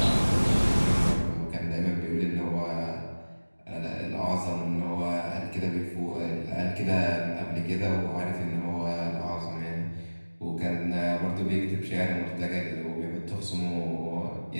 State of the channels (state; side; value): inverted; both; correlation -1.00